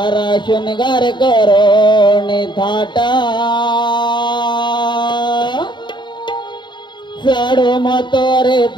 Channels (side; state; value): right; late; 0.22 ms